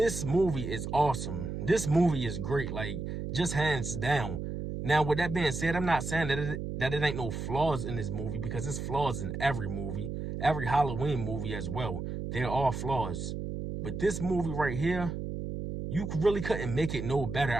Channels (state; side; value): noise; right; hum, 5 dB below the sound